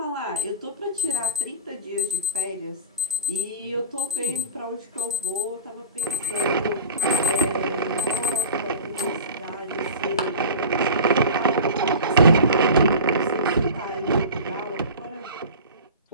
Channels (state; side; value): inverted; both; correlation -0.36